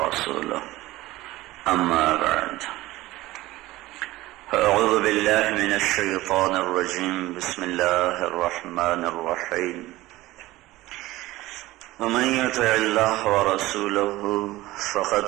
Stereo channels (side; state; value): left; quieter; 17.9 dB